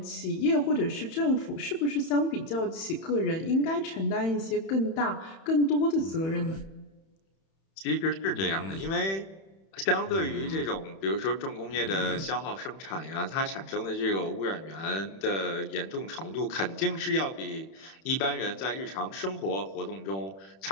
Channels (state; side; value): late; right; 31 ms